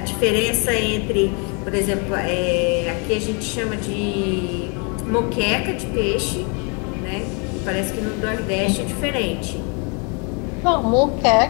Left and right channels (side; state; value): right; quieter; 35.0 dB